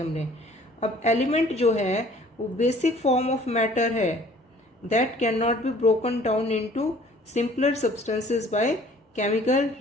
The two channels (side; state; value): both; normal; correlation 0.53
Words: अब एलिमेंट जो है वो बेसिक फॉर्म ऑफ मैटर है that can not be broken down into simpler substances by chemical